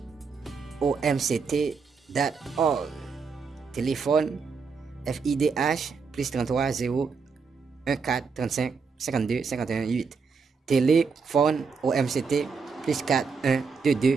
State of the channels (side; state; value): left; quieter; 5.2 dB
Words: Téléphone FIDH +33 0 14 35 52 51 8. Téléphone OMCT +4 1